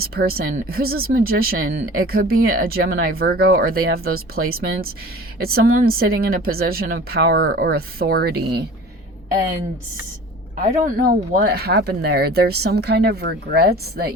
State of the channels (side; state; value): both; normal; correlation 0.41